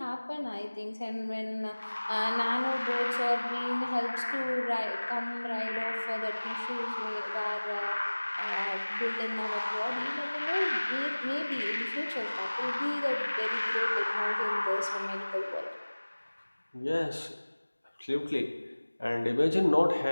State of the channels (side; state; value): both; inverted; correlation -1.00